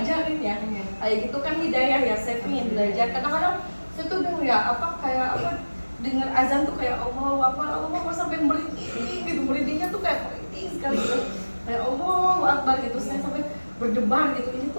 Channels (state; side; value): inverted; both; correlation -1.00